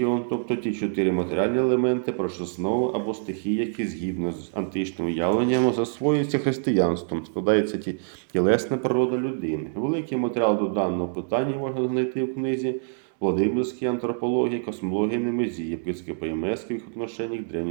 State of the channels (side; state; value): left; silent; digital silence